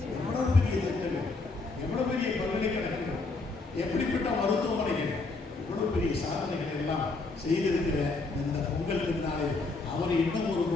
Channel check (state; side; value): quieter; right; 3.7 dB